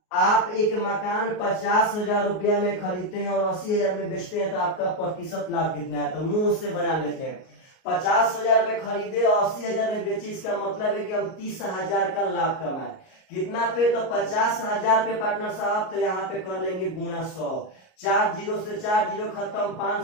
आप एक मकान 50,000 रुपया में खरीदते हैं और 80,000 में बेचते हैं तो आपका प्रतिशत लाभ कितना है? तो मुंह उससे बना लेते हैं। 50,000 में खरीदे और 80,000 में बेचे, इसका मतलब है कि हम 30,000 का लाभ कमाए। कितना पे? तो 50,000 पे पार्टनर साहब। तो यहाँ पे कर लेंगे गुणा 100। 4 जीरो से 4 जीरो खत्म, 5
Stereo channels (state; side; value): late; right; 38 ms